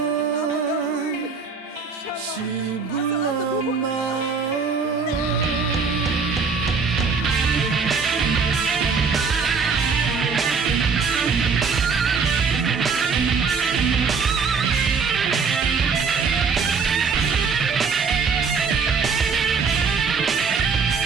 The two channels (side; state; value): left; quieter; 5.3 dB